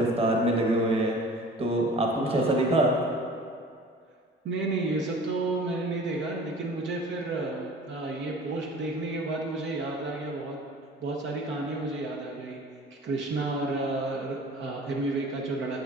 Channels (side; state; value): both; normal; correlation 0.44